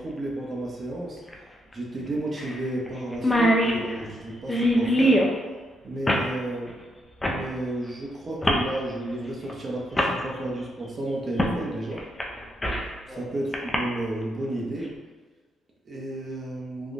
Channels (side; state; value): both; normal; correlation 0.79